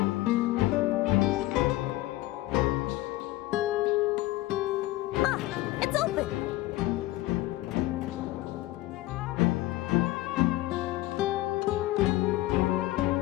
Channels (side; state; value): right; quieter; 17.7 dB